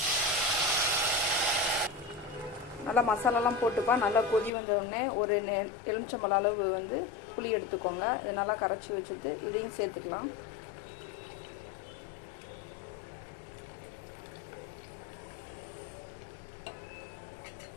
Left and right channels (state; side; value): drops out; right; at 4.5 s